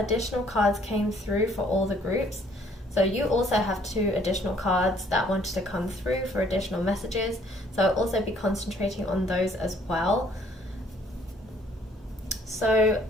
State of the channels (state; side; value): normal; both; correlation 0.61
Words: cards came through for all the groups. So you also have 2 additional cards that wanted to come through for additional messages. So I'll also be concentrating on those as well. So